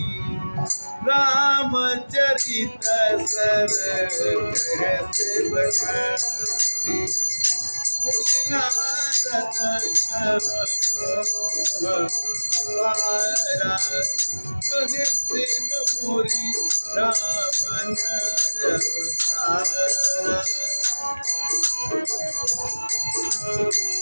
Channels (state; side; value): inverted; both; correlation -1.00